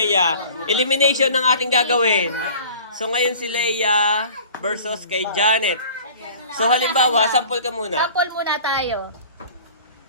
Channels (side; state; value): both; inverted; correlation -0.44